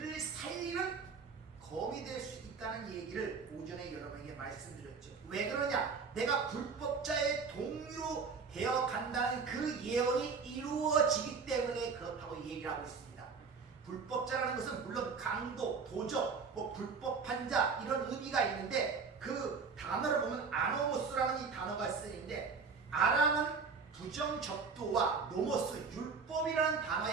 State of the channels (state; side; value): quieter; left; 5.2 dB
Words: 살리는 검이 될 수 있다는 얘기를 오전에 여러분에게 말씀드렸죠. 왜 그러냐? 내가 불법자의 동료 되어 간다는 그 예언이 이루어지기 때문에 그렇다고 얘기를 하고 있습니다. 불법자라는 것은 물론 강도, 도적, 불법한 자 이런 의미가 있는데 그 단어를 보면 아노모스라는 이 단어가 쓰이는데 아람은 부정적도와 노모스, 율법이라는